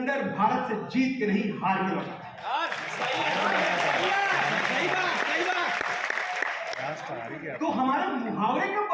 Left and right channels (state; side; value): identical; both; correlation 1.00